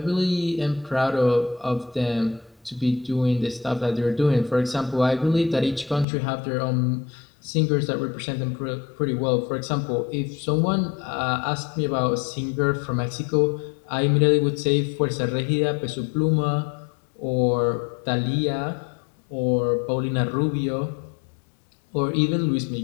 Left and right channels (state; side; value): drops out; right; at 6.1 s